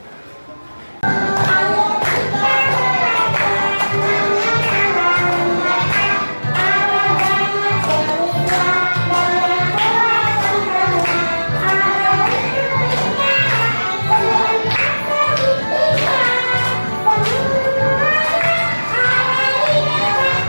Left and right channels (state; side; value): inverted; both; correlation -1.00